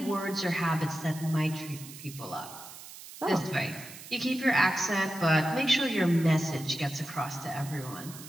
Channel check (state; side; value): noise; right; hiss, 15 dB below the sound